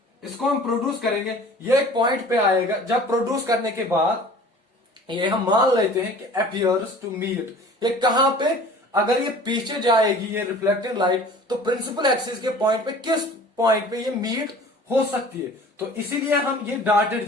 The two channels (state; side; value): normal; both; correlation 0.45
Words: इसको हम प्रोड्यूस करेंगे, ये एक पॉइंट पे आएगा, जब प्रोड्यूस करने के बाद ये हम मान लेते हैं कि अपीयर्स टू मीट, ये कहां पे, अगर ये पीछे जाएगी ये रिफ्लेक्टेड लाइट, तो प्रिंसिपल एक्सिस के पॉइंट पे किस पॉइंट पे ये मीट हो सकती है। तो इसीलिए हम ये डॉटेड